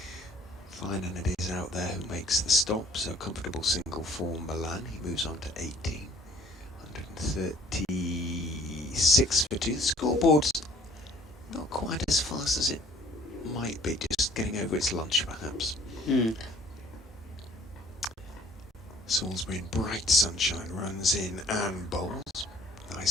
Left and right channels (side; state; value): both; normal; correlation 0.56